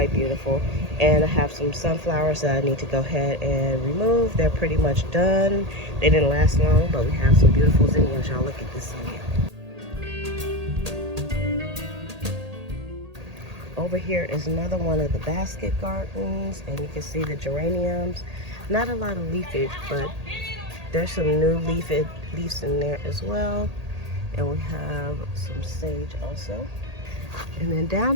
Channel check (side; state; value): left; late; 1.8 ms